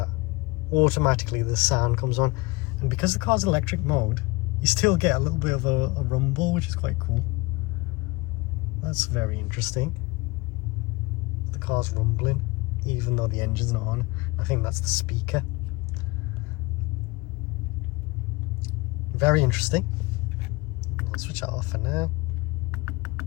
automatically the sound comes on. And because the car's electric mode, you still get a little bit of a rumble, which is quite cool. That's very interesting. The car's rumbling even though the engine's not on. I think that's the speaker. Very interesting. I'll switch that off for now.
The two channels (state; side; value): quieter; right; 23.8 dB